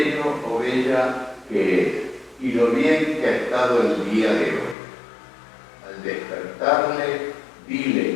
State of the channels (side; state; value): right; drops out; at 4.8 s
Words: o bella que es y lo bien que ha estado el día de hoy. Al despertarle,